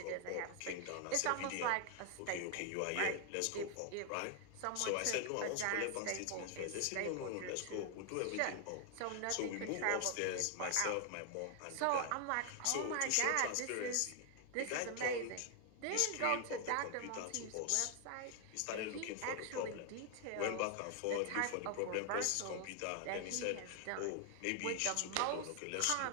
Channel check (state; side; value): different; both; correlation 0.00